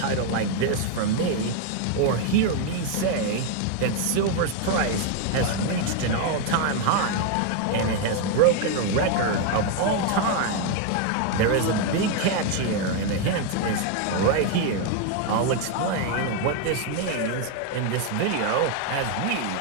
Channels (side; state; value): both; different; correlation 0.01